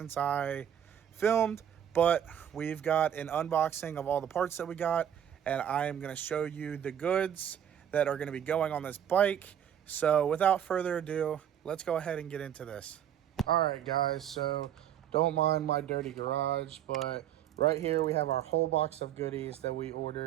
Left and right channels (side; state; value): left; quieter; 9.7 dB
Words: I filmed, but we've got an unboxing of all the parts that we got, and I am going to show you the goods that are going to be going on this bike. So without further ado, let's go ahead and get into this. All right, guys, so don't mind my dirty garage, but right here we have our whole box of goodies that we